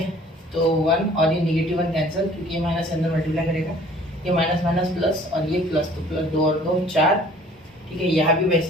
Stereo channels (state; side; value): normal; both; correlation 0.53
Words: तो 1 और ये निगेटिव 1 कैंसिल, क्योंकि ये माइनस अंदर मल्टीप्लाई करेगा, ये माइनस माइनस प्लस और ये प्लस, तो प्लस 2 और 2 4, ठीक है। यहाँ भी